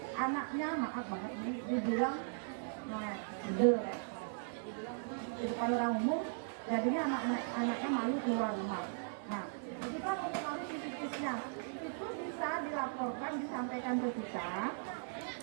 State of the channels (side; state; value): left; silent; digital silence